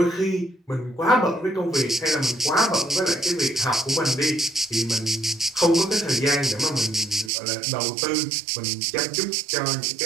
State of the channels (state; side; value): drops out; left; at 7.3 s